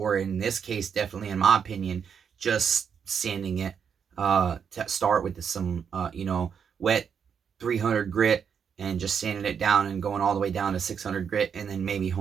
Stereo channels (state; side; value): quieter; left; 7.1 dB